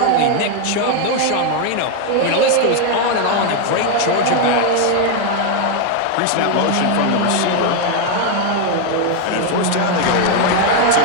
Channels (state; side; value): different; both; correlation 0.01